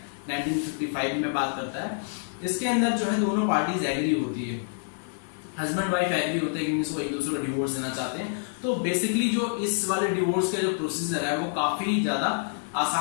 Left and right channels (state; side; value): silent; right; digital silence